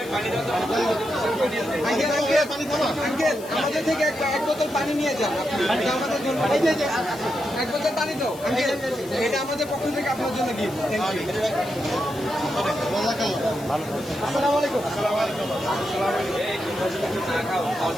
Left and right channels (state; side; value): noise; left; hiss, 18 dB below the sound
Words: আঙ্কেল আঙ্কেল আঙ্কেল আমাদের থেকে এক বোতল পানি নিয়ে যান। এটা আমাদের জন্য, এই যে এক বোতল পানি দাও আঙ্কেল, এটা আমাদের পক্ষ থেকে আপনার জন্য গিফট। Thank you. আসসালামু আলাইকুম।